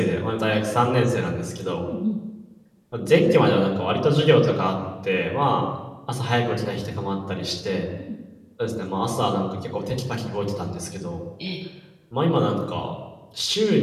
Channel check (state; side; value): identical; both; correlation 1.00